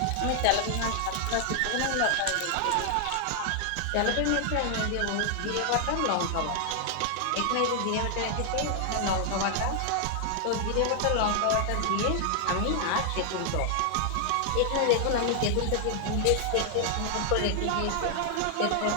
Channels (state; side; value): different; both; correlation 0.00